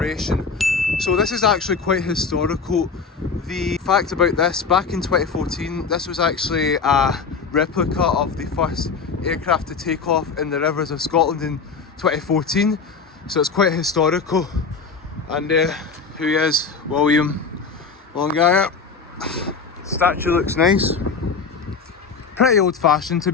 So this is actually quite historical. The fact about this, back in 2014, this was actually a replica of the first aircraft to take off in the rivers of Scotland in 2014. So it's quite historical. And here he is, William Longire. Statue looks nice. Pretty old fashioned to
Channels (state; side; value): quieter; right; 5.2 dB